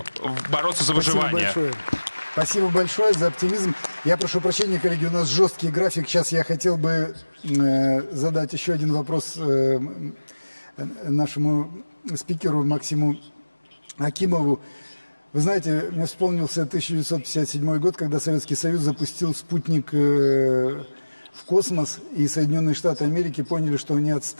бороться за выживание? Спасибо большое за оптимизм. Я прошу прощения, коллеги, у нас жесткий график. Сейчас я хотел бы задать еще один вопрос нашему спикеру Максиму Акимову. Вы знаете, мне вспомнился 1957 год, когда Советский Союз запустил спутник в космос, и Соединенные Штаты Америки поняли, что они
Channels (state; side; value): inverted; both; correlation -1.00